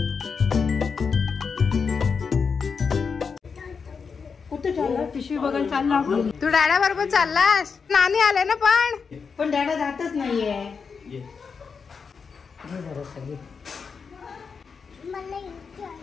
कुठे चालला? पिशवी बघायला चालला. तू डॅडा बरोबर चाललास? नानी आले ना पण डॅडा जातच नाहीये.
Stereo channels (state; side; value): quieter; right; 5.6 dB